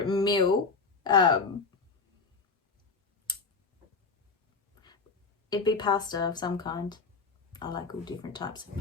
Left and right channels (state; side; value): quieter; right; 4.6 dB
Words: meal. It'd be pasta of some kind. I like all different types of